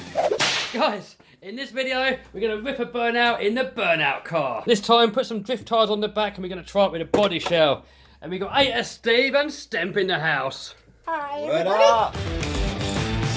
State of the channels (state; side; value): identical; both; correlation 1.00